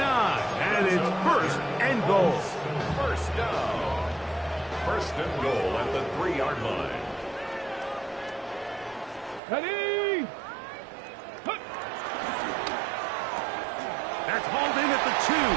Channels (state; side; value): drops out; left; at 9.4 s